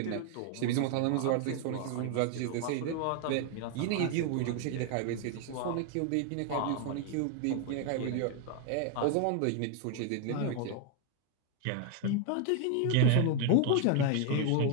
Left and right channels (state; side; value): different; both; correlation 0.00